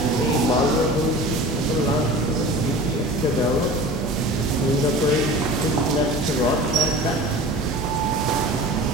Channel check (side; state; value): both; normal; correlation 0.38